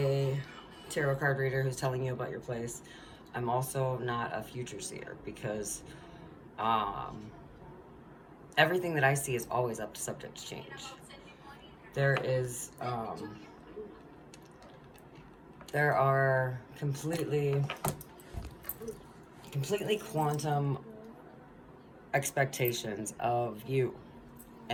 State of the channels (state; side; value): identical; both; correlation 1.00